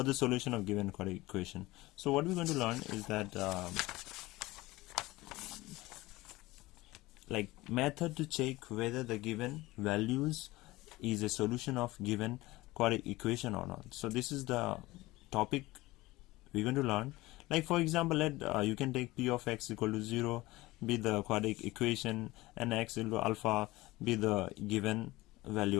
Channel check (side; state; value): right; quieter; 19.5 dB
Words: the solution of given quadratic equation. So what we're going to learn is that like method to check whether the given values is a solution of given quadratic equation or not. So this is the topic we're going to learn. Like for example, you can take p of x equal to 0 be the quadratic equation and x equal to alpha be the given